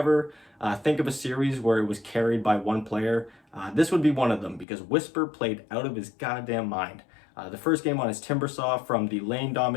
think of a series where it was carried by one player, this would be one of them, because Whisper played out of his goddamn mind. The first game on his Timbersaw, from the lane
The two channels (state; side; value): drops out; right; at 4.7 s